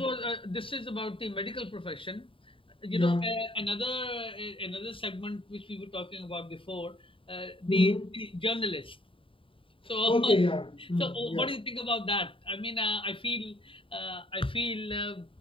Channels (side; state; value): right; late; 0.25 ms